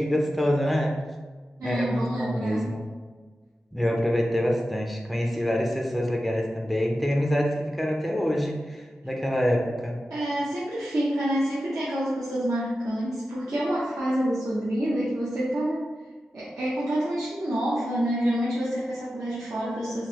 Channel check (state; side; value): normal; both; correlation 0.92